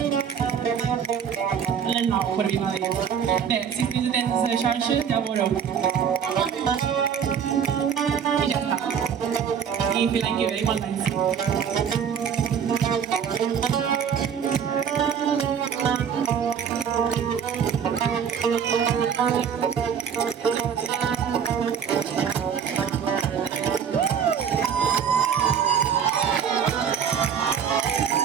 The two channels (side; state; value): left; quieter; 7.7 dB